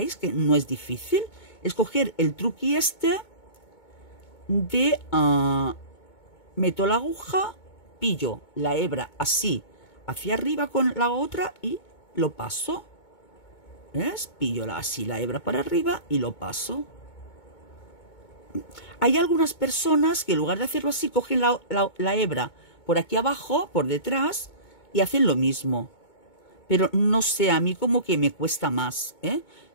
que no es difícil? Es coger el truqui este de meto la aguja, pillo la hebra así hacia arriba con la otra y lo paso. ¿Ves? Pillo así la hebra para arriba y lo paso. Hay algunas personas que en lugar de hacerlo así cogen la hebra por aquí abajo, por detrás, y hacen lo mismo. Pero no sé, a mí como que me cuesta más,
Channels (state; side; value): late; right; 2.2 ms